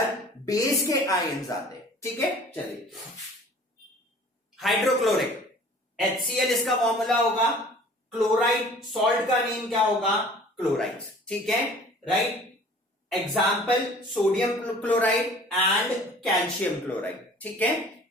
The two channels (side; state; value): both; normal; correlation 0.48